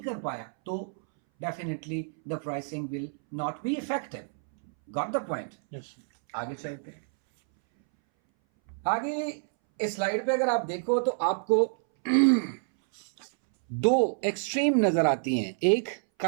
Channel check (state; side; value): silent; left; 59 dB below the other